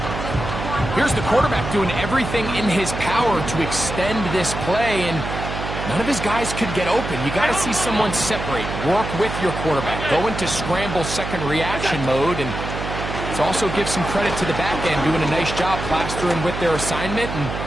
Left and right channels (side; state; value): right; noise; hum, 6 dB below the sound